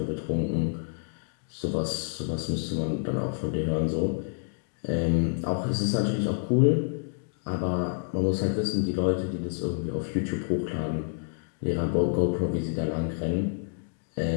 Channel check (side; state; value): right; silent; digital silence